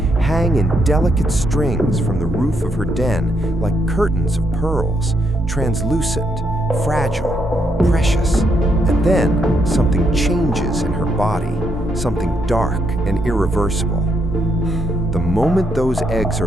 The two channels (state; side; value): normal; both; correlation 0.77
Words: hang in delicate strings from the roof of her den like curtains of pearls, translucent, fragile, precious. And then something changes in her body, something dark and irreversible. The moment those eggs